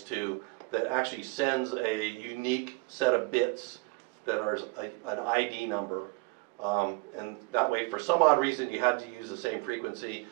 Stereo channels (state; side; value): quieter; left; 29.0 dB